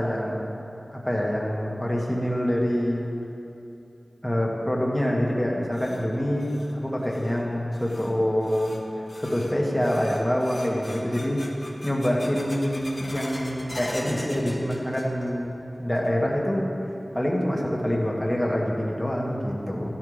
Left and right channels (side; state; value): both; normal; correlation 0.98